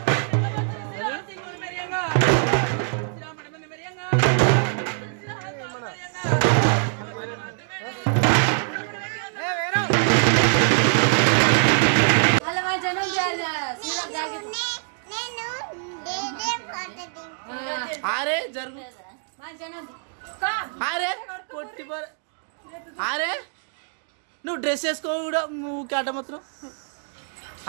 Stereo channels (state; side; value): silent; left; 58 dB below the other